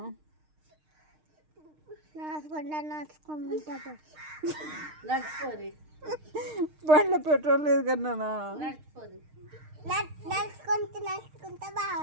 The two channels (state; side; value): late; left; 6.5 ms